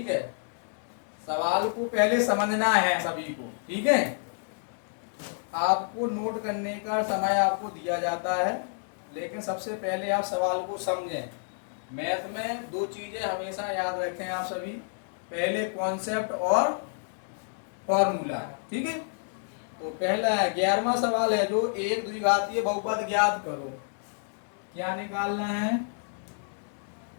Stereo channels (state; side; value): silent; right; digital silence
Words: है। सवाल को पहले समझना है सभी को, ठीक है। आपको नोट करने का समय आपको दिया जाता है, लेकिन सबसे पहले आप सवाल को समझें। मैथ में दो चीजें हमेशा याद रखें आप सभी, पहले कॉन्सेप्ट और फॉर्मूला, ठीक है। तो पहला 11वां सवाल है जो एक द्विघातीय बहुपद ज्ञात करो। क्या निकालना है,